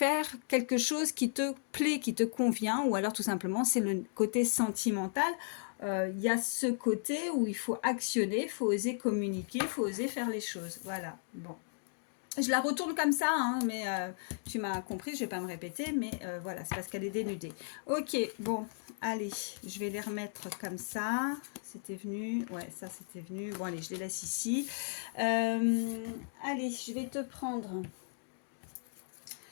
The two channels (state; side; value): silent; right; digital silence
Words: quelque chose qui te plaît, qui te convient, ou alors tout simplement, c'est le côté sentimental. Il y a ce côté où il faut actionner, il faut oser communiquer, il faut oser faire les choses. Voilà, bon. Je la retourne comme ça, hein, mais tu m'as compris, je ne vais pas me répéter, mais voilà, c'est parce qu'elle est dénudée. Ok, bon, allez, je vais les remettre comme ça. C'était venu, ouais, ça c'était venu. Bon, allez, je les laisse ici. Allez, je vais te prendre